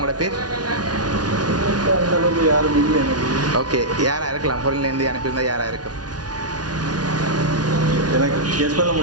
பேர்? அந்த அளவுக்கு யாரும் இல்லை எனக்கு. ஓகே, யாராக இருக்கலாம்? ஃபொரின்லேருந்து அனுப்பியிருந்தால் யாராக இருக்கும்? எனக்கு கெஸ் பண்ண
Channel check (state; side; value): late; left; 0.69 ms